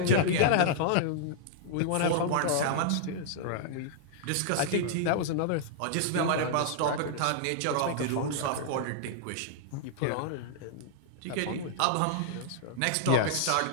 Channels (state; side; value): different; both; correlation -0.01